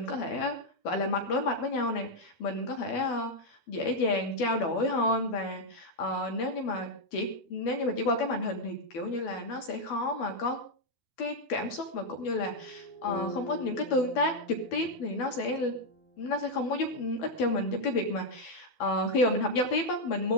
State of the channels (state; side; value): late; right; 12 ms